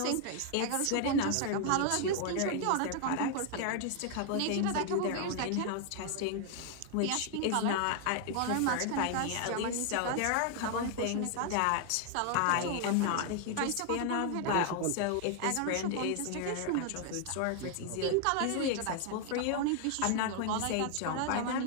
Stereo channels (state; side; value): different; both; correlation 0.00